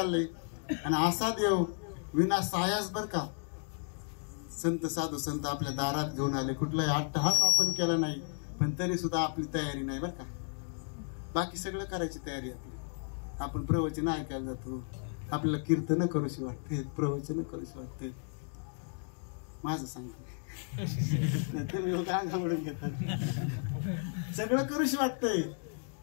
आणि असा देव विना सायास बर का संत साधू संत आपल्या दारात घेऊन आले. कुठलाही अट्टहास आपण केला नाही पण तरी सुद्धा आपली तयारी नाही बर का. बाकी सगळं करायची तयारी आपली. आपण प्रवचन ऐकायला जातो. आपल्याला कीर्तन करूशी वाटते प्रवचन करूशी वाटते. माझं सांगतो अंगावडून घेतात. सगळं करूशी वाटतंय.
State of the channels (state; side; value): silent; right; 55 dB below the other